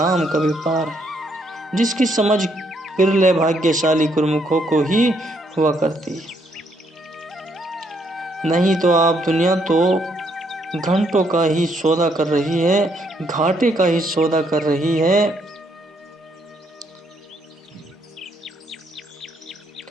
का व्यापार है, जिसकी समझ बिरले भाग्यशाली गुरुमुखों को ही हुआ करती है। नहीं तो आप दुनिया तो घंटों का ही सौदा कर रही है, घाटे का ही सौदा कर रही है।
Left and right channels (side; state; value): both; normal; correlation 0.72